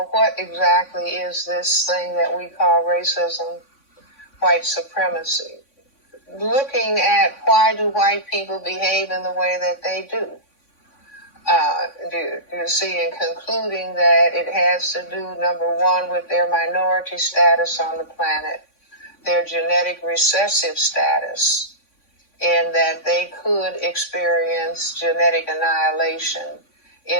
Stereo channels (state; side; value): late; right; 3.5 ms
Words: what exactly is this thing that we call racism, white supremacy? Looking at why do white people behave in the way that they do. You see, and concluding that it has to do, number one, with their minority status on the planet, their genetic recessive status, and that they could experience genetic annihilation,